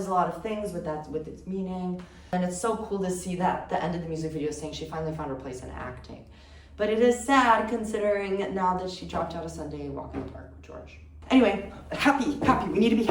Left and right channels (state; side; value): identical; both; correlation 1.00